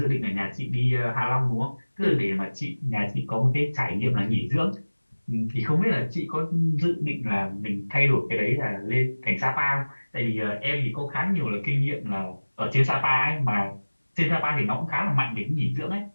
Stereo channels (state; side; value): inverted; both; correlation -1.00